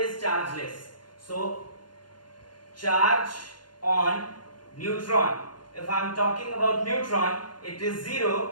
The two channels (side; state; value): right; late; 0.71 ms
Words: chargeless. So, charge on neutron. If I'm talking about neutron, it is